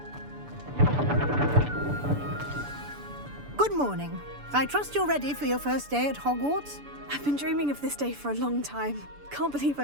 Good morning. I trust you're ready for your first day at Hogwarts? I've been dreaming of this day for a long time. Can't believe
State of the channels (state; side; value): late; left; 6.9 ms